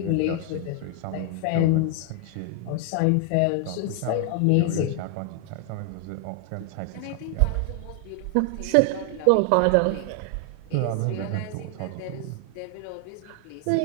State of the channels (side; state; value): both; different; correlation 0.00